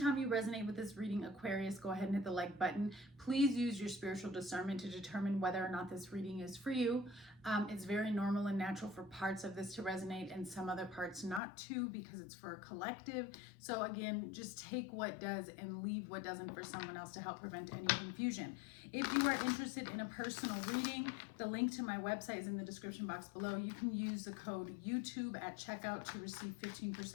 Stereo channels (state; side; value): drops out; right; at 11.4 s